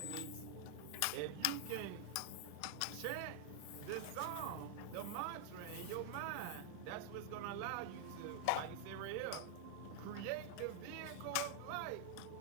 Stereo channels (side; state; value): both; different; correlation 0.00